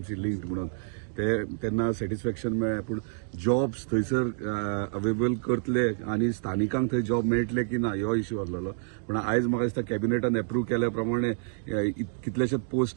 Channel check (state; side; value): silent; left; digital silence